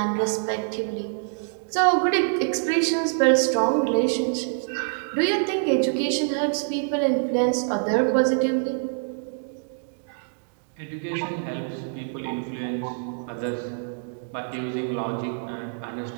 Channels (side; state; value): left; silent; digital silence